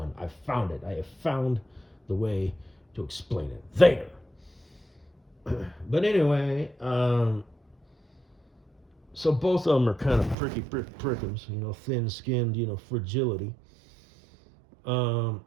I found it. I have found the way to explain it. There. But anyway, so both of them are kind of pricky prickums, you know, thin-skinned, you know, fragility. And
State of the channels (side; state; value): left; drops out; at 10.4 s